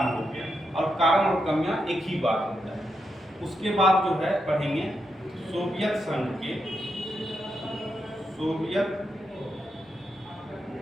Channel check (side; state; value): both; normal; correlation 0.83